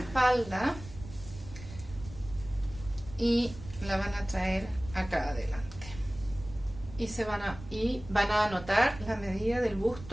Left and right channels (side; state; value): right; noise; rumble, 15 dB below the sound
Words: y la van a traer acá adelante. Y van a anotar la medida del